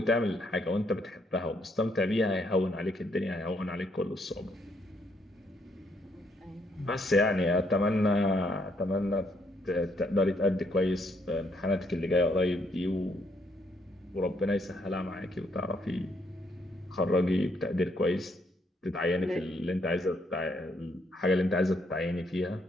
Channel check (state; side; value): normal; both; correlation 0.72